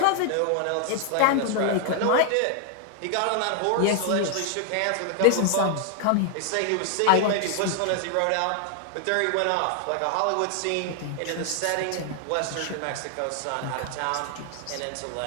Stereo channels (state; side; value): different; both; correlation 0.00